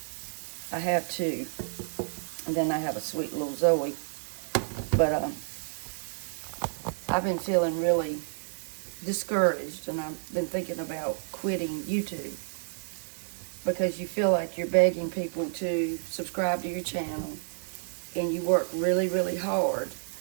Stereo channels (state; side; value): silent; left; 58 dB below the other